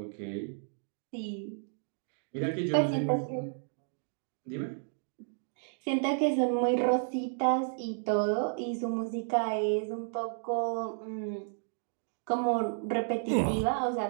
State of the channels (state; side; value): silent; left; digital silence